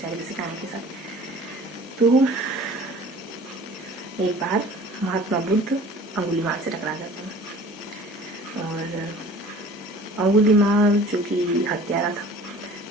जैसे कहानी के साथ। तो एक बार महात्मा बुद्ध अंगुलीमाल से टकरा जाते हैं और अंगुलीमाल जो कि हत्यारा था,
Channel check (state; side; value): normal; both; correlation 0.45